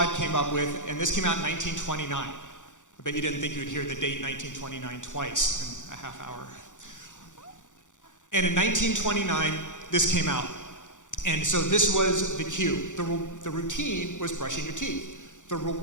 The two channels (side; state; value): right; late; 0.86 ms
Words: came up with, and this came out in 1929. I bet you didn't think you would hear the date 1929 twice in a half hour. And in 1929, this came out. And so this was the cue. The routine was brushing your teeth. The